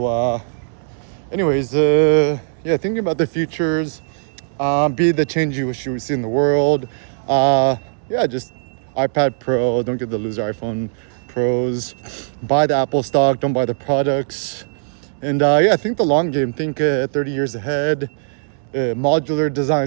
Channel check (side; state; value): left; silent; 66 dB below the other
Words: anyways, yeah, thinking about the futures. Be the change you wish you would see in the world. Yeah, just iPad Pro. Don't get the loser iPhone Pros. Buy the Apple stock. Don't buy the products. And yeah, think the long game. Think 30 years ahead. Modular